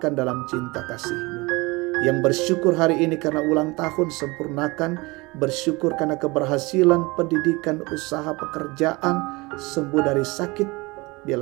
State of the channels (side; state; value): left; quieter; 24.2 dB